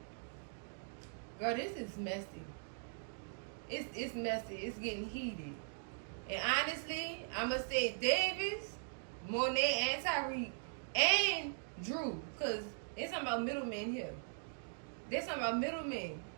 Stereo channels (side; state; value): left; silent; digital silence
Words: Girl, this is messy. It's messy. It's getting heated. And honestly, I'ma say Davis, Monet, and Tyreek, and Drew, cause there's something about middlemen here. There's something about middlemen.